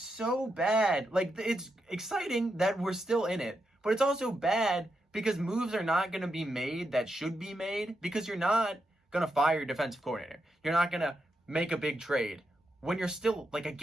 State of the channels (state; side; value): normal; both; correlation 0.85